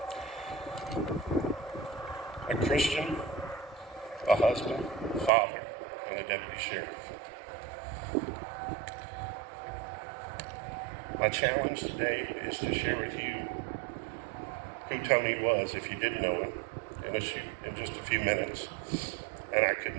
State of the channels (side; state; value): left; drops out; at 5.3 s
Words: A Christian, a husband, father, and a deputy sheriff. My challenge today is to share with you who Tony was, if you didn't know him, in just a few minutes. And I